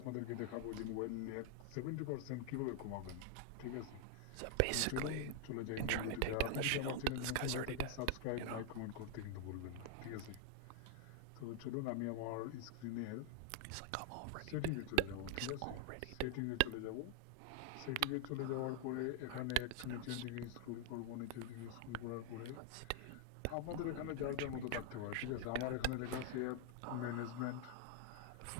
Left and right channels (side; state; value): both; different; correlation 0.00